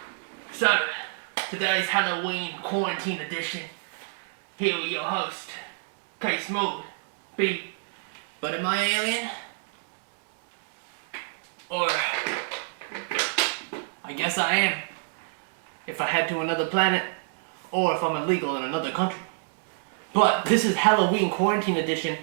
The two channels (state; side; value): silent; left; digital silence